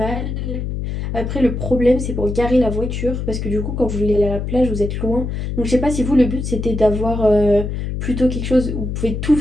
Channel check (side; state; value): left; noise; hum, 4 dB below the sound